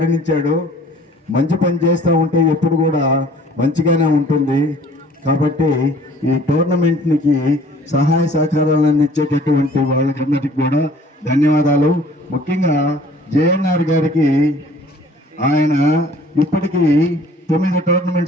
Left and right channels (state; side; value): normal; both; correlation 0.53